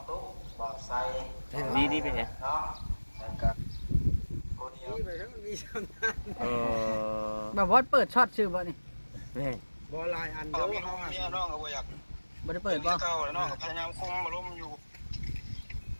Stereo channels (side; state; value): both; inverted; correlation -1.00